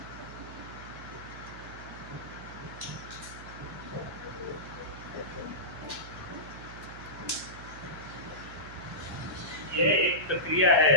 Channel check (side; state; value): right; noise; hum, 13 dB below the sound